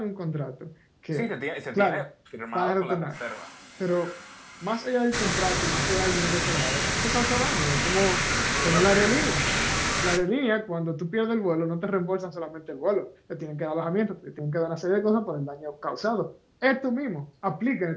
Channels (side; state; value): both; identical; correlation 1.00